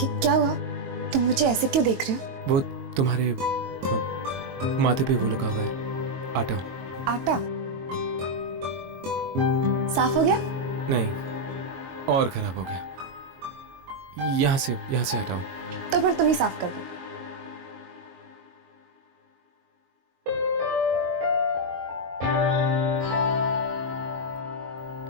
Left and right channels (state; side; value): late; left; 22 ms